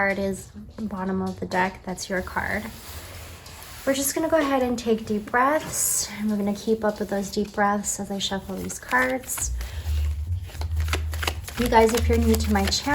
is bottom of the deck. That's your card. We're just gonna go ahead and take deep breaths, and we're gonna keep up with those deep breaths as I shuffle these cards. You guys, if you're new to my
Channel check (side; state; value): both; identical; correlation 1.00